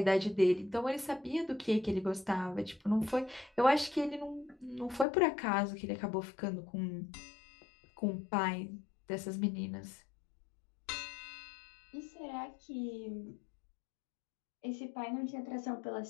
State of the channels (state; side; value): drops out; right; at 5.1 s